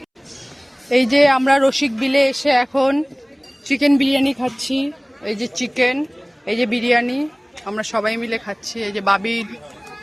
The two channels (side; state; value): both; identical; correlation 1.00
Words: এই যে আমরা রসিক বিলে এসে এখন চিকেন বিরিয়ানি খাচ্ছি। এই যে চিকেন, এই যে বিরিয়ানি, আমরা সবাই মিলে খাচ্ছি। এই যে বাবির,